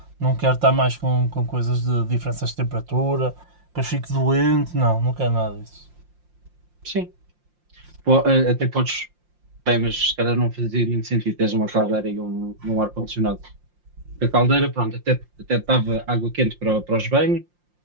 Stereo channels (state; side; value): late; left; 5.7 ms